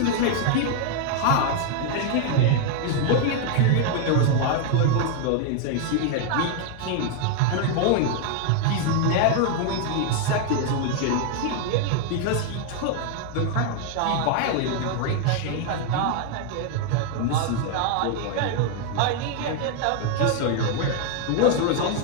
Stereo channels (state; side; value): different; both; correlation 0.00